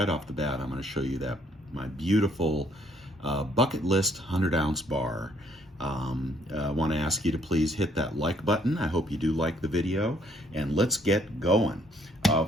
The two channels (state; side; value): normal; both; correlation 0.66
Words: off the bat, I'm going to show you that my beautiful bucket list 100-ounce bar. I want to ask you to please hit that like button. I hope you do like the video, and let's get going.